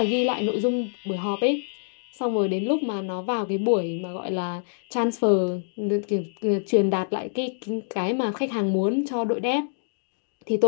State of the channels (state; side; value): silent; right; digital silence